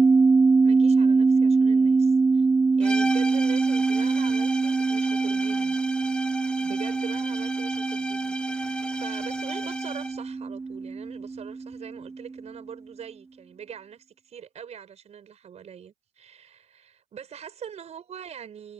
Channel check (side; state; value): left; quieter; 3.7 dB